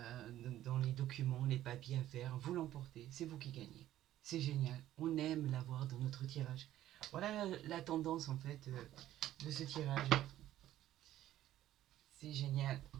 les documents, les papiers à faire, vous l'emportez, c'est vous qui gagnez. C'est génial, on aime l'avoir dans notre tirage. Voilà la tendance en fait de ce tirage. C'est génial.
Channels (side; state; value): left; quieter; 13.2 dB